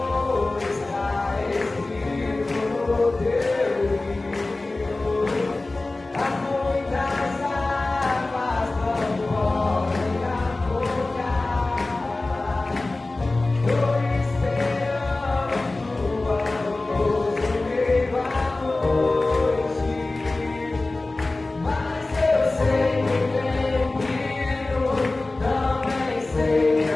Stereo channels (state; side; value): quieter; right; 3.1 dB